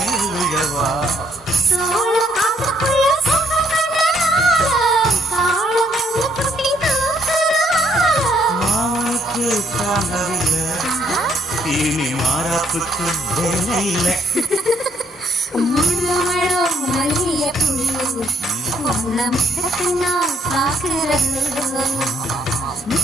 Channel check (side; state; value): both; normal; correlation 0.69